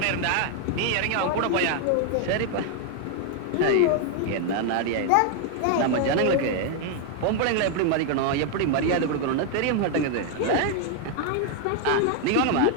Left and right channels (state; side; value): different; both; correlation 0.00